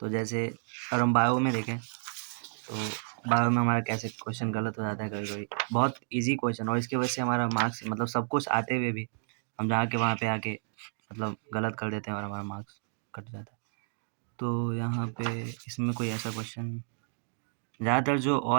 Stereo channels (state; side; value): silent; left; 57 dB below the other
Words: तो जैसे अगर हम बायो में देखें तो बायो में हमारा कैसे क्वेश्चन गलत हो जाता है कभी-कभी। बहुत ईज़ी क्वेश्चन और इसकी वजह से हमारा मार्क्स, मतलब सब कुछ आते हुए भी हम जाके वहाँ पे आके मतलब गलत कर देते हैं और हमारा मार्क्स कट जाता है। तो यहाँ पे इसमें कोई ऐसा क्वेश्चन, ज़्यादातर जो